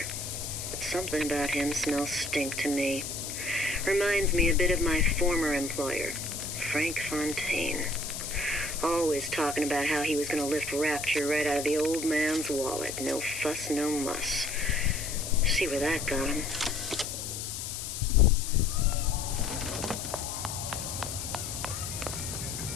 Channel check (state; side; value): noise; left; hiss, 6 dB below the sound